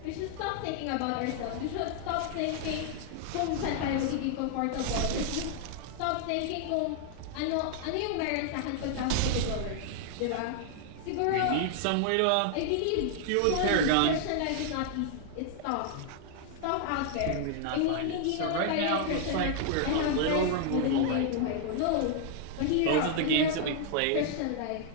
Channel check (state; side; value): different; both; correlation -0.01